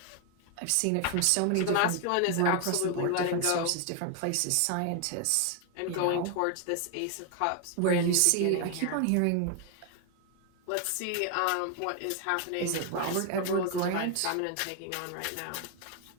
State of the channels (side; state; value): both; different; correlation 0.01